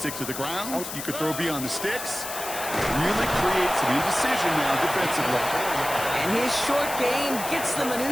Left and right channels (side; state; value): left; noise; hiss, 8 dB below the sound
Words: to the ground, you could throw beyond the sticks. Really create some indecision now defensively. And his short gain gets them a